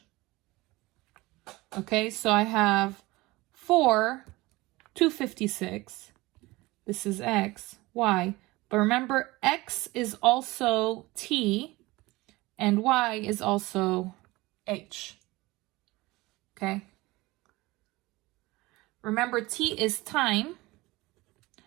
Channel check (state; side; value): quieter; left; 21.0 dB